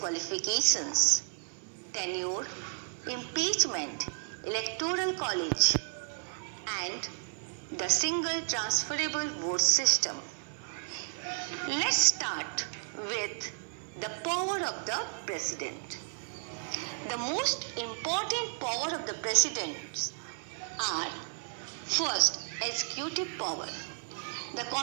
tenure, impeachment, electoral college, and the single transferable vote system. Let's start with the power of the president. The most important power of the president are first, executive power. The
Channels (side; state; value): left; silent; 56 dB below the other